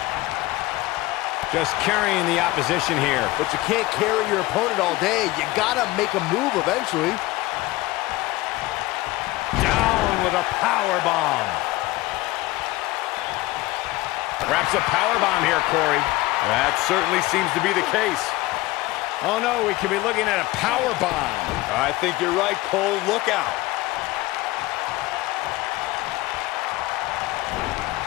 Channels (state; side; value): quieter; right; 19.3 dB